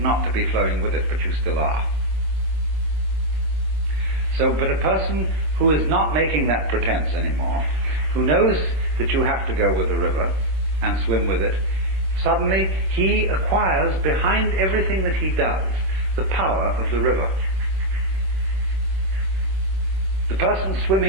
to be flowing with it, but you still are. So, but a person who is not making that pretense anymore, who knows that you have to go with the river and swim with it, suddenly he acquires behind everything that he does the power of the river. The person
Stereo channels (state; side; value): late; left; 26 ms